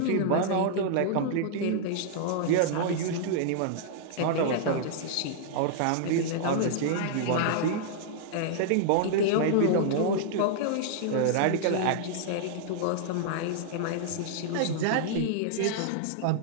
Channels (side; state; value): both; different; correlation -0.01